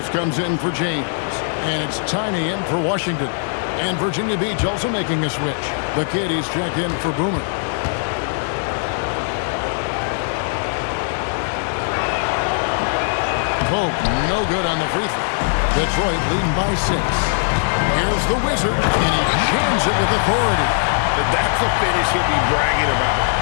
comes in for James. And it's Tiny in for Washington. And Virginia Beach also making a switch. The Kitties checked in for Boomer. Pope, no good on the free throw. Detroit leading by 6. Here's the Wizard, and he jams it with authority. That's a finish he'll be bragging about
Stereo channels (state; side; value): silent; right; digital silence